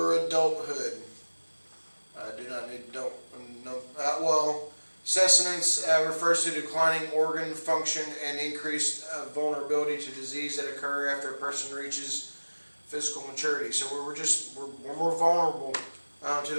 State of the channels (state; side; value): inverted; both; correlation -1.00